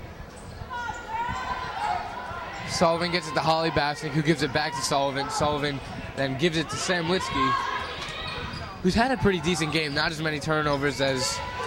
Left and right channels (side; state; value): both; identical; correlation 1.00